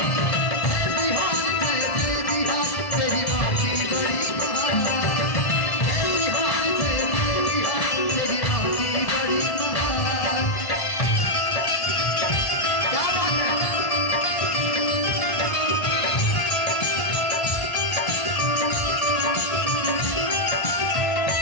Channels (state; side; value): late; right; 1.7 ms